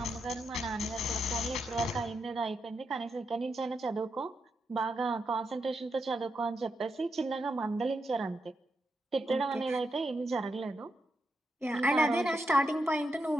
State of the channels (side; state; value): both; normal; correlation 0.84